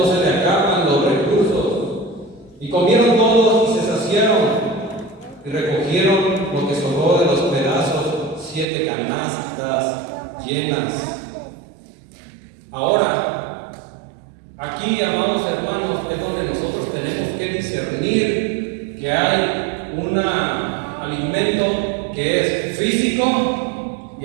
se le acaban los recursos. Y comieron todos y se saciaron, y recogieron lo que sobró de los pedazos, 7 canastas llenas. Ahora, aquí, amados hermanos, es donde nosotros tenemos que discernir que hay un alimento que es físico y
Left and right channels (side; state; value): left; drops out; at 8.7 s